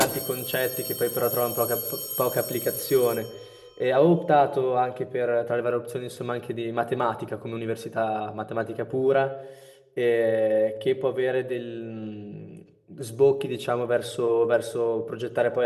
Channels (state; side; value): identical; both; correlation 1.00